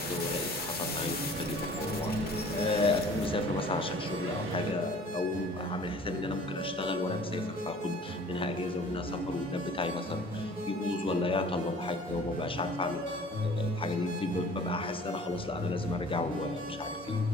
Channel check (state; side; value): normal; both; correlation 0.49